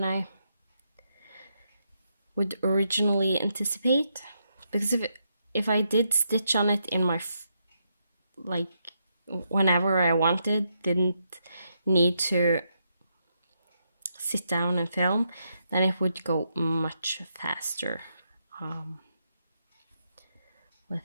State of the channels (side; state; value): both; inverted; correlation -0.81